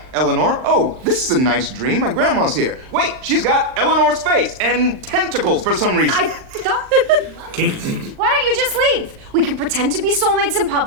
Eleanor. Oh, this is a nice dream. My grandma's here. Wait, she's got Eleanor's face and tentacles for some reason. I thought... Kinky. Why don't you just leave? We can pretend to be soulmates in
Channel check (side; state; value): left; late; 39 ms